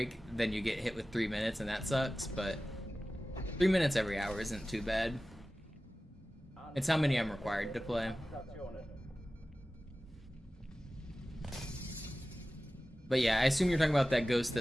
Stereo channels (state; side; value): normal; both; correlation 0.96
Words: then you get hit with 3 minutes and that sucks, but 3 minutes every hour isn't too bad. It's how many I'm required to play. Stationen. But yeah, I assume you're talking about that ghost